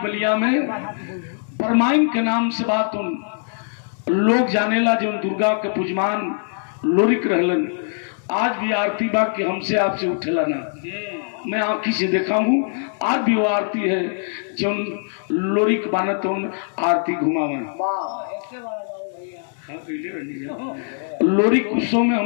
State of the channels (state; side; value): silent; right; 64 dB below the other